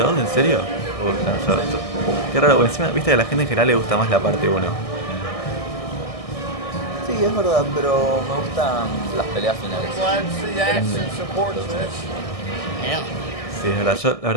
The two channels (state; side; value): late; right; 1.6 ms